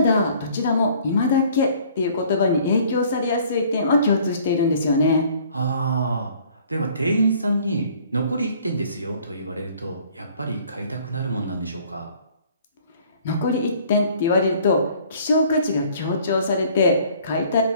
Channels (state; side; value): inverted; both; correlation -0.55